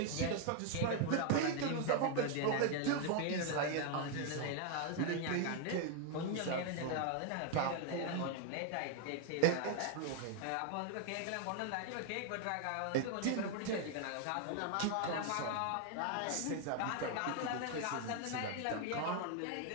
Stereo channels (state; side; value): different; both; correlation 0.01